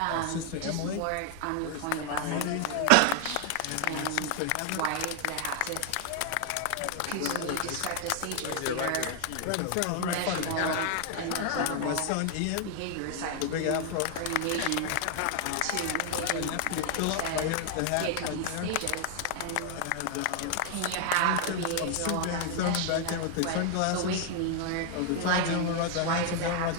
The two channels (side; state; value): both; different; correlation 0.00